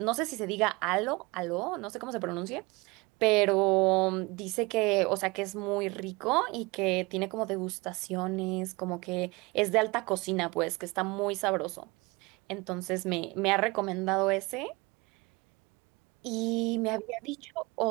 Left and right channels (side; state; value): left; quieter; 24.6 dB